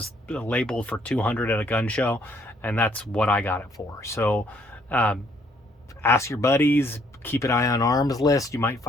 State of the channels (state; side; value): normal; both; correlation 0.67